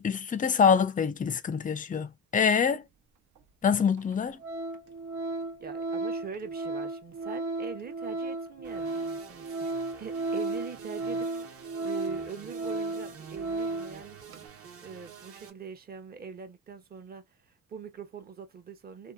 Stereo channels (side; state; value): right; quieter; 3.1 dB